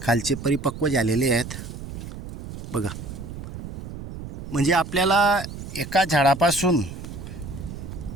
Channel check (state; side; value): noise; right; rumble, 10 dB below the sound